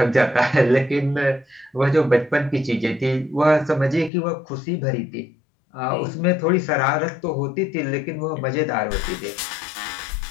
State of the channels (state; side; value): drops out; right; at 4.1 s